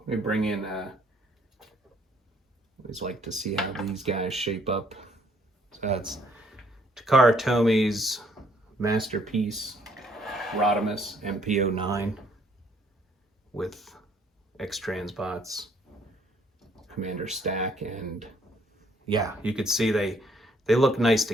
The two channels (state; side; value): normal; both; correlation 0.65